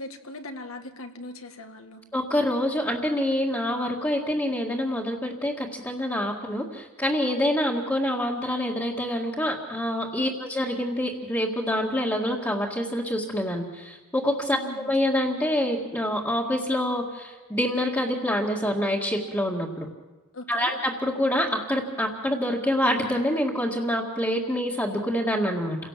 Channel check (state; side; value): normal; both; correlation 0.70